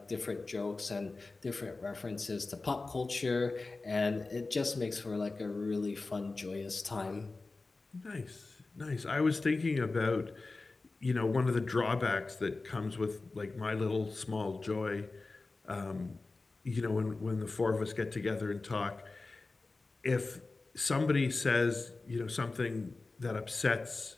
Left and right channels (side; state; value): right; quieter; 3.6 dB